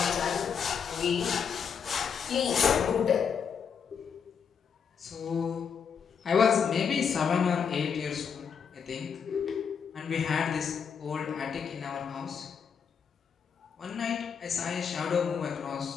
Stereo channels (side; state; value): right; quieter; 6.9 dB